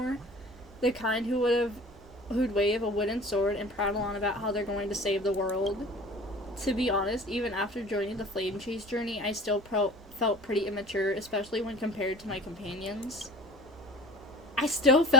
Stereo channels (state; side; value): normal; both; correlation 0.42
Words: The kind who'd wave a wooden sword and prattle on about how they're going to save the world. To be honest, even after joining the Flame Chase journey, I still felt pretty immature, especially when compared to my companions. I still